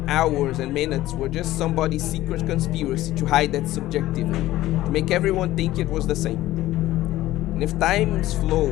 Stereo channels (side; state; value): right; quieter; 15.6 dB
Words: hours and minutes were just somebody's secret conspiracy to hide that subjectivity, to make everyone think it was the same. And if time's flow